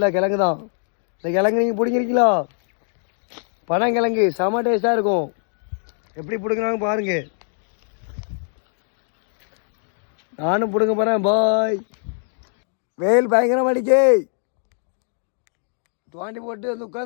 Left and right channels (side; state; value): right; silent; digital silence